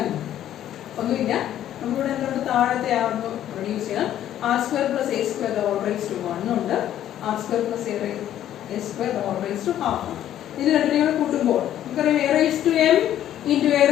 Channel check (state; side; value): quieter; right; 11.6 dB